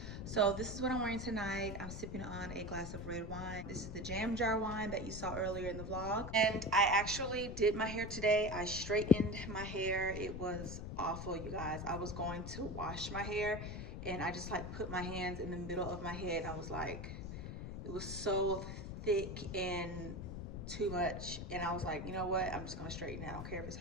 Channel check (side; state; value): left; noise; rumble, 7 dB below the sound